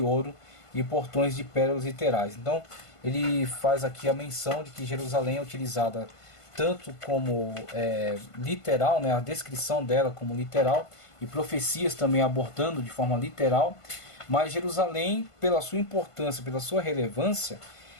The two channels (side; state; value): right; late; 1.5 ms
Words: ouro e portões de pérolas literais. Então, ele faz aqui a menção de que Jerusalém é utilizada tanto como literal, né, a descrição dela como literal, e profecias também abordando de forma literal, mas Jerusalém, pela sua importância, pela sua relevância,